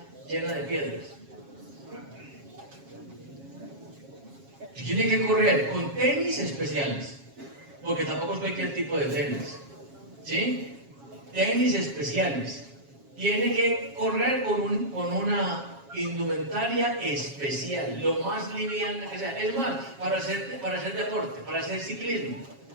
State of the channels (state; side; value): late; left; 7.3 ms